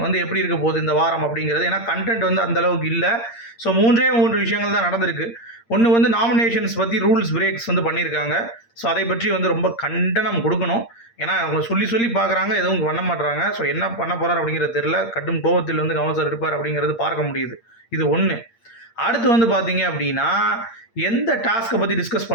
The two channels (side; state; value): right; late; 8.7 ms